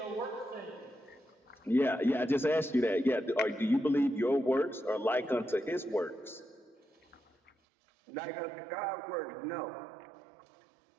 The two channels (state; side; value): drops out; left; at 7.6 s